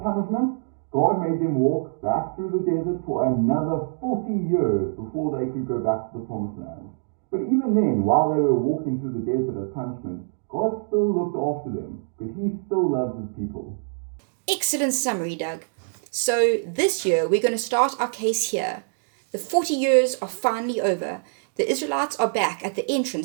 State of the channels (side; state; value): left; silent; digital silence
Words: God made them walk back through the desert for another 40 years before they could go back to the promised land. But even then, while they were walking through the desert as punishment, God still looked after them because he still loved his people. Excellent summary, Doug. So this year we're going to start our case here. The 40 years are finally over. The Israelites are back at the